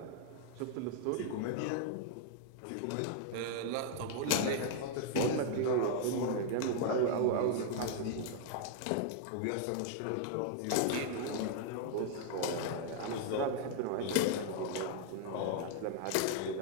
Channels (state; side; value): different; both; correlation -0.01